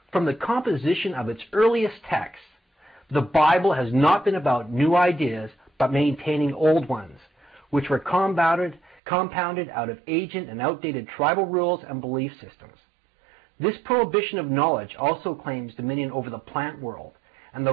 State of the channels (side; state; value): left; drops out; at 9.0 s